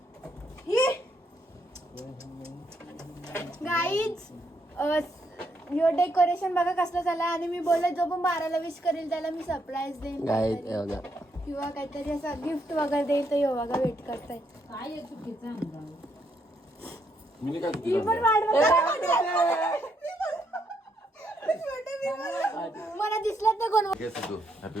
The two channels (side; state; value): both; normal; correlation 0.76